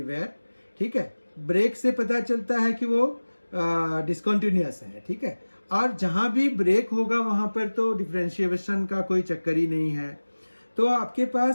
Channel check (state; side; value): inverted; both; correlation -1.00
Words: ठीक है, ब्रेक से पता चलता है कि वो डिसकंटिन्यूअस है। ठीक है, और जहां भी ब्रेक होगा वहां पर तो डिफरेंशिएशन का कोई चक्कर ही नहीं है। तो आपके